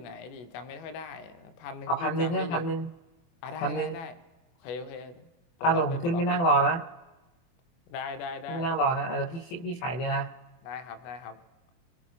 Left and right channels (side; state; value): right; late; 24 ms